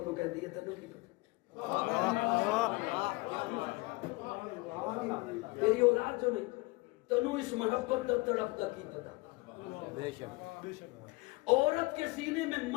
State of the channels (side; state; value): right; quieter; 24.7 dB